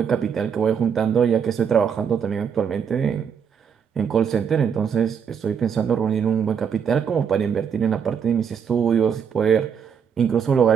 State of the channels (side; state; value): left; quieter; 7.3 dB